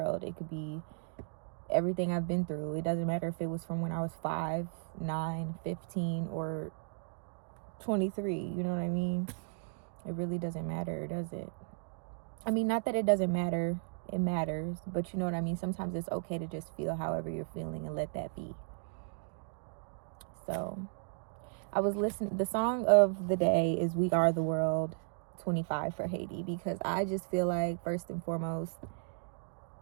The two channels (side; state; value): left; silent; 54 dB below the other